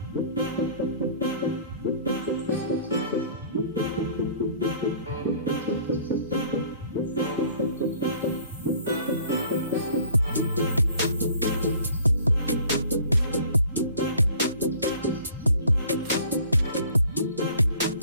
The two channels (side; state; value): both; inverted; correlation -0.51